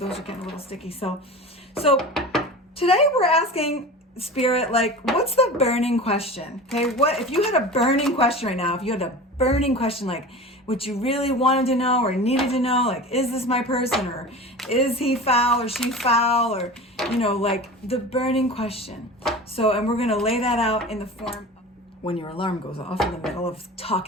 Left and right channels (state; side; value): normal; both; correlation 0.33